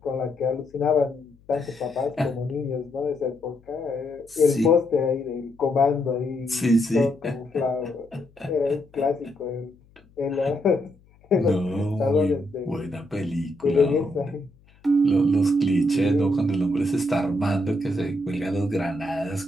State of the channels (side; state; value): left; noise; hum, 29 dB below the sound